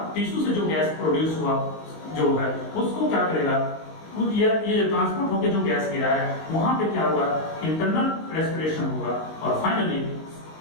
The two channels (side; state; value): right; late; 19 ms